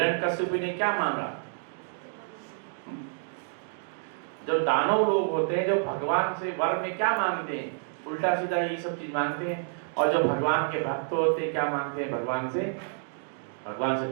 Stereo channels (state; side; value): silent; left; digital silence